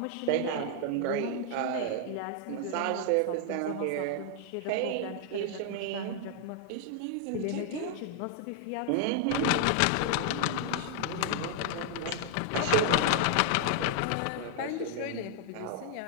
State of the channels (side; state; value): both; different; correlation 0.00